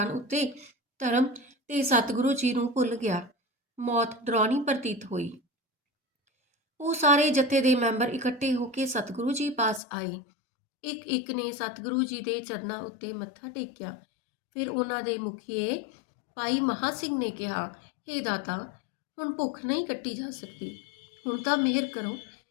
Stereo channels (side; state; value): right; drops out; at 9.8 s